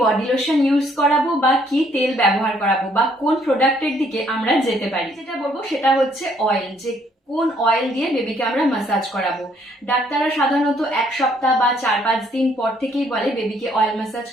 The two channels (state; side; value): normal; both; correlation 0.66